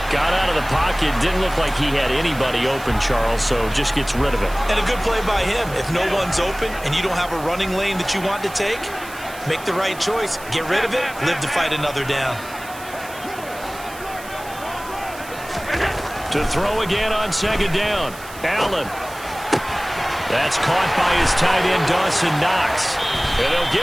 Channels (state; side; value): noise; right; hiss, 17 dB below the sound